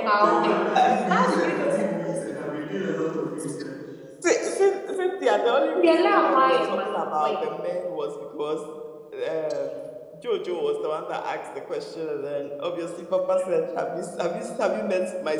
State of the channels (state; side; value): identical; both; correlation 1.00